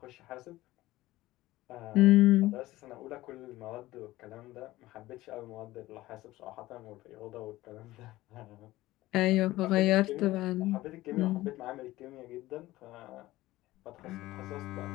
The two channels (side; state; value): right; quieter; 17.3 dB